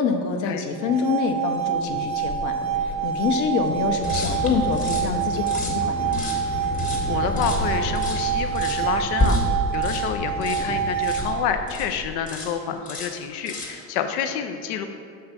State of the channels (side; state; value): both; normal; correlation 0.08